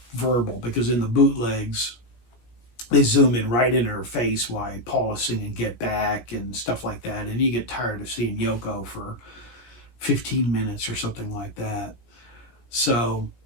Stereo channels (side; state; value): right; late; 17 ms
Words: verbal, because in the bootlegs, they zoom in right in her face while Paul is singing Get Back and stuff like that. And you get tired of seeing Yoko for 15 minutes or something like that. So,